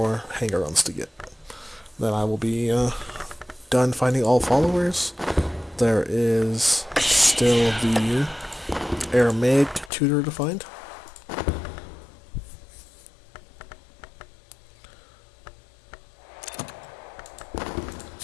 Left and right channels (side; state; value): right; drops out; at 9.9 s